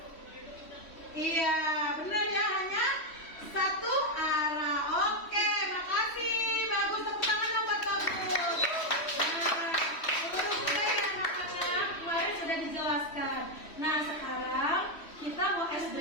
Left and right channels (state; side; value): late; right; 3.1 ms